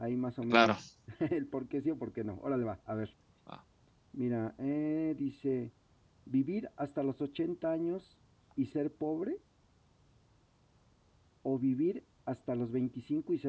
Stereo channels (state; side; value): identical; both; correlation 1.00